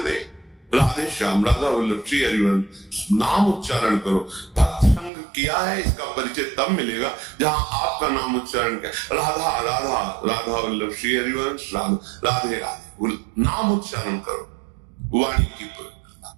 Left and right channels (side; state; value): left; drops out; at 5.1 s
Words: नहीं। राधे श्याम, राधा वल्लभ, श्री हरिवंश, नाम उच्चारण करो। भक्त संग किया है, इसका परिचय तब मिलेगा जहां आपका नाम उच्चारण किया, राधा राधा, राधा वल्लभ, श्री हरिवंश, राधे राधे, नाम उच्चारण करो, वाणी की